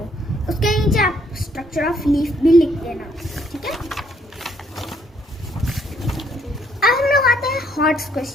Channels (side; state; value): both; normal; correlation 0.68